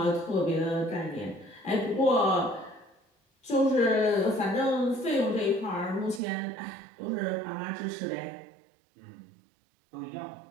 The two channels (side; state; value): left; drops out; at 6.2 s